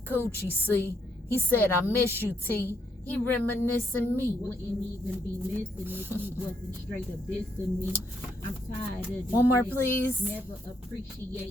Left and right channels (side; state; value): both; normal; correlation 0.75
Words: see, he said, I miss you, T. He reminiscing me. Wouldn't even be missing if he wasn't straight up dissing me. I'm tired of One more, please. Never